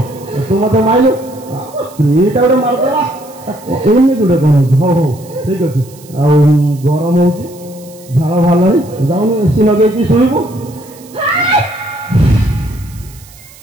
ତୁ ମତେ ମାରିଲୁ ସ୍ତ୍ରୀଟା ଗୋଟେ ମାରିଦେଲା ଏମିତି ଗୋଟେ କ'ଣ ହଉଛି ହଉ ଠିକ ଅଛି ଆଉ ଗରମ ହଉଛି ଝାଳ ବାହାରିଲାଣି ଯାଉନୁ ଏସି ଲଗେଇକି ଶୋଇବୁ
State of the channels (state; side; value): noise; right; hiss, 23 dB below the sound